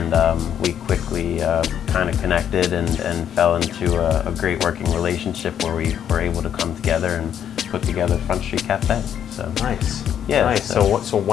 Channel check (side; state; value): right; quieter; 9.4 dB